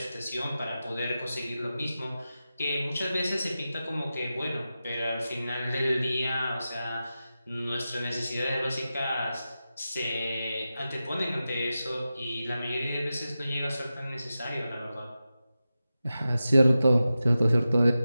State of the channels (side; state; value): both; inverted; correlation -0.92